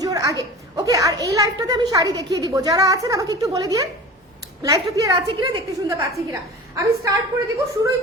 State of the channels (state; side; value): normal; both; correlation 0.36